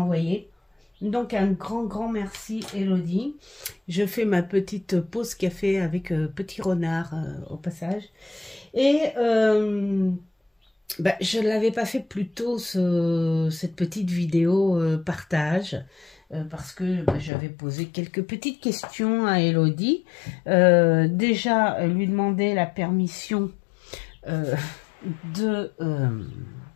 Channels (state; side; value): drops out; right; at 17.3 s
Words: Donc un grand merci Elodie. Je fais ma petite pause café avec Petit Renard au passage. Et je ne l'avais pas fait plus tôt, cette petite vidéo partage, parce que j'avais posé quelques petites questions à Elodie. Déjà, lui demander la permission de